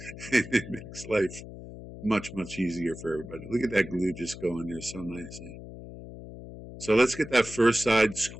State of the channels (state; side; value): noise; left; hum, 13 dB below the sound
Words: it makes life much, much easier for everybody. Look at that glue just going there so nicely. So let's get that first side